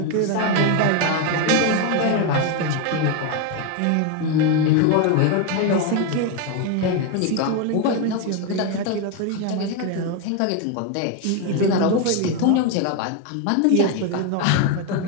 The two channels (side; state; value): both; different; correlation 0.02